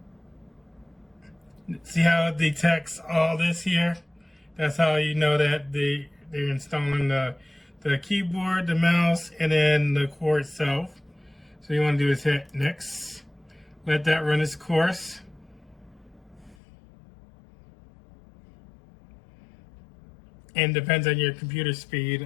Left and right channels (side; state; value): right; drops out; at 16.6 s